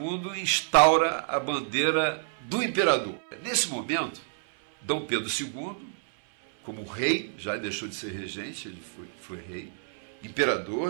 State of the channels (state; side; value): silent; left; 59 dB below the other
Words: instaura a bandeira do imperador. Nesse momento, Dom Pedro II, como rei, já deixou de ser regente, ele foi rei,